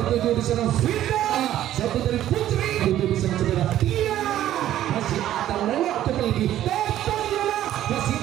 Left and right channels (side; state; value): left; quieter; 12.5 dB